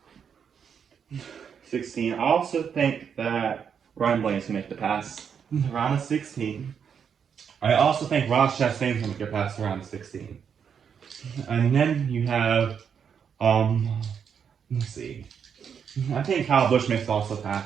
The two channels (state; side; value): quieter; left; 7.3 dB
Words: 16. I also think that Ryan Blaney's gonna make the pass around 16. I also think Ross Chastain's gonna make it past around 16. And then you have, let's see. I think Kyle Busch makes also